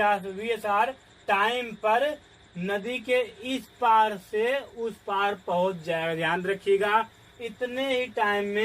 टाइम पर नदी के इस पार से उस पार पहुंच जाएगा। ध्यान रखिएगा, इतने ही टाइम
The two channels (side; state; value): both; identical; correlation 1.00